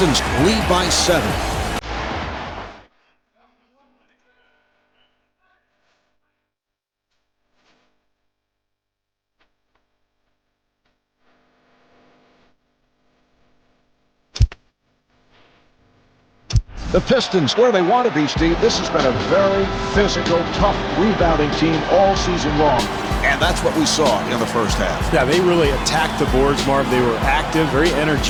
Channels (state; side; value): identical; both; correlation 1.00